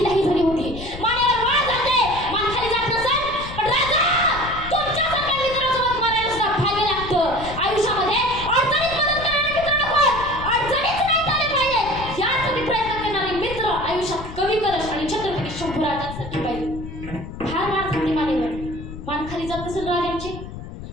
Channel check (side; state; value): left; noise; rumble, 11 dB below the sound